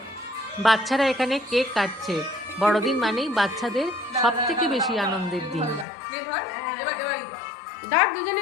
বাচ্চারা এখানে কেক কাটছে। বড়দিন মানেই বাচ্চাদের সব থেকে বেশি আনন্দের দিন।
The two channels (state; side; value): drops out; right; at 5.9 s